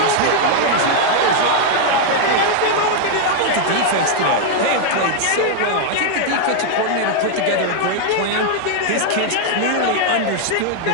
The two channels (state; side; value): different; both; correlation 0.00